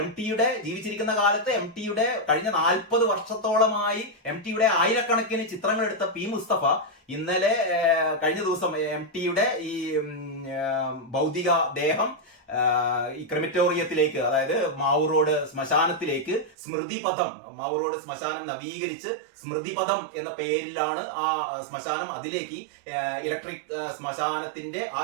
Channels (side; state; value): left; drops out; at 16.5 s